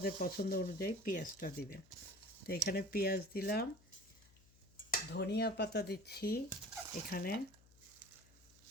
পছন্দ অনুযায়ী পেঁয়াজটা দিবেন। তো এখানে পেঁয়াজ দিলাম, ধনিয়া পাতা দিচ্ছি এখানে,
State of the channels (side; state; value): left; noise; hum, 26 dB below the sound